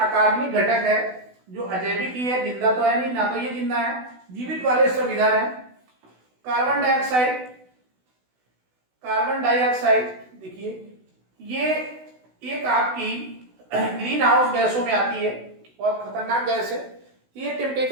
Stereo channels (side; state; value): left; late; 16 ms